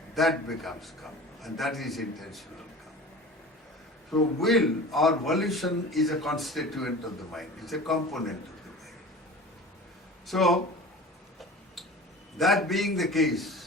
that becomes kamma, and that is intentional. So will or volition is a constituent of the mind. It's a component of the mind. So, that being the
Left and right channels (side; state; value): both; normal; correlation 0.38